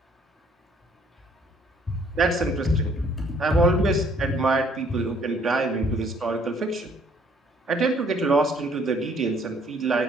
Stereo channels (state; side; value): normal; both; correlation 0.62